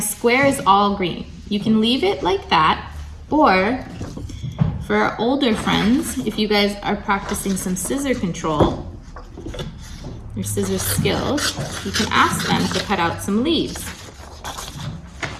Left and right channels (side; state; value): both; identical; correlation 1.00